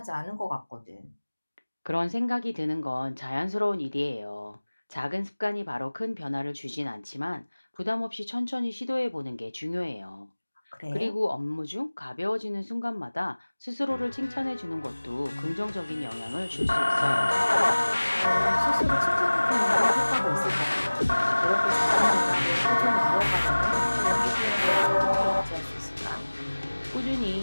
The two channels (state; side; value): inverted; both; correlation -1.00